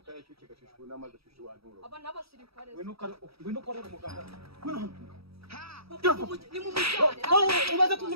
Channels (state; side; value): late; left; 0.77 ms